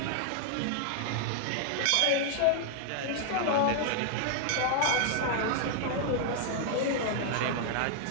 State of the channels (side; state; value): both; different; correlation 0.00